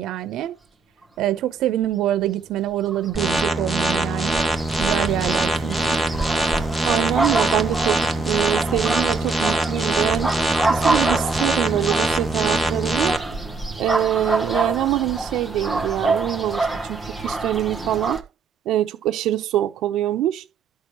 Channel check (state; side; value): quieter; left; 4.6 dB